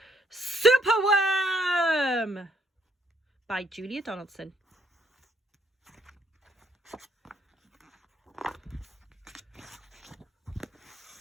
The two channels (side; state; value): both; normal; correlation 0.70